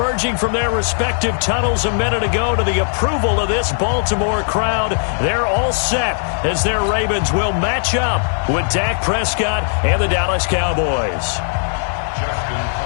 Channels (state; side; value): silent; right; 67 dB below the other